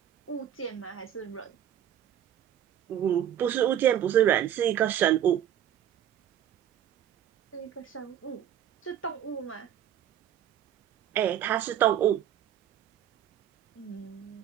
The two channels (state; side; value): quieter; left; 10.4 dB